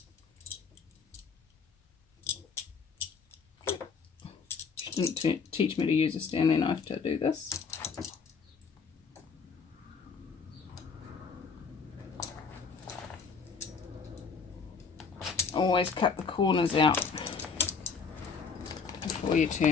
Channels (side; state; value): right; quieter; 5.5 dB